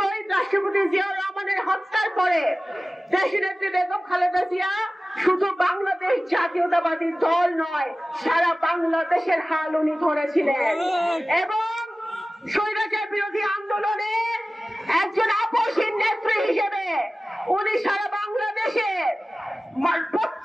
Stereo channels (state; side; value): normal; both; correlation 0.96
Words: রাষ্ট্রপতি জিয়াউর রহমানের হত্যার পরে দেশনেত্রী বেগম খালেদা জিয়া শুধু বাংলাদেশ জাতীয়তাবাদী দল নয়, সারা বাংলাদেশের হাল উনি ধরেছিলেন এবং স্বৈরাচার বিরোধী আন্দোলনে একজন আপসহীন নেত্রী হিসেবে উনি সারা বাংলাদেশে